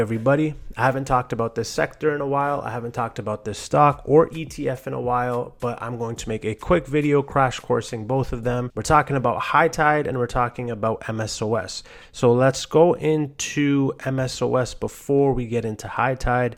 I haven't talked about this sector in a while. I haven't talked about this stock or ETF in a while, but I'm going to make a quick video crash coursing both of them. We're talking about high tide and we're talking about MSOS. So let's go into MSOS before we get into high tide,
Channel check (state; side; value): identical; both; correlation 1.00